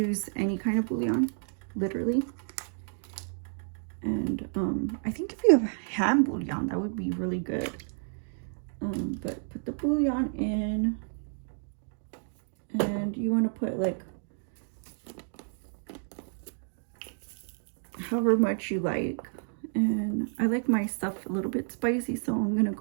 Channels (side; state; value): left; silent; digital silence